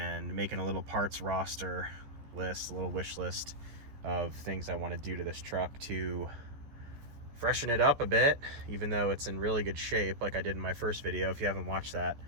making a little parts roster list, a little wish list of things I want to do to this truck to freshen it up a bit, even though it's in really good shape, like I did in my first video. If you haven't watched that,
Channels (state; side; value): late; left; 14 ms